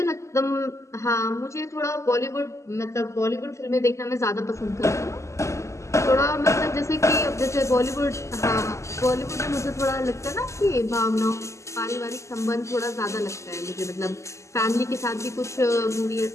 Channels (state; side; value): late; right; 0.14 ms